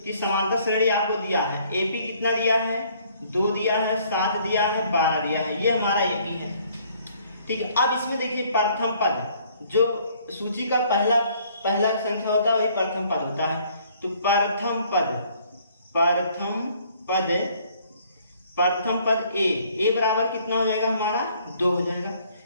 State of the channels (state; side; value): inverted; both; correlation -0.61